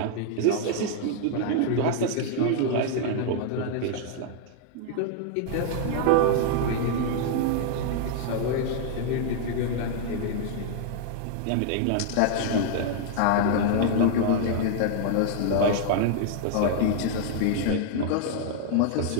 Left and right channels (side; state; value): both; different; correlation 0.00